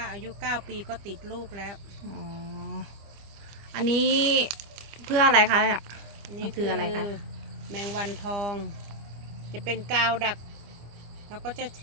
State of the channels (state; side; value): late; left; 25 ms